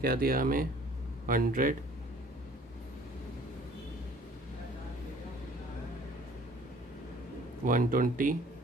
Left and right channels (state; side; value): normal; both; correlation 0.53